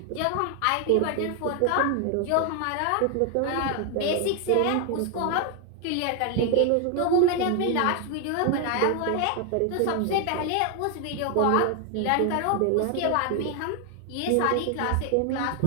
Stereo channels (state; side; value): different; both; correlation 0.00